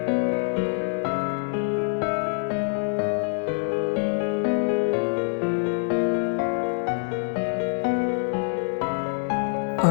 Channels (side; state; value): right; silent; 56 dB below the other